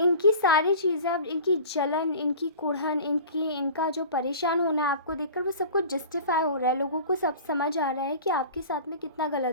सारी चीज़ें, अब इनकी जलन, इनकी कुढ़न, इनका जो परेशान होना है आपको देखकर, वो सब कुछ जस्टिफाई हो रहा है। लोगों को सब समझ आ रहा है कि आपके साथ में कितना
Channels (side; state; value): both; inverted; correlation -0.39